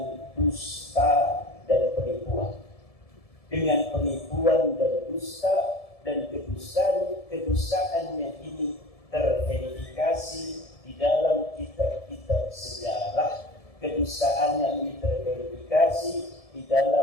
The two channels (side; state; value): right; late; 1.7 ms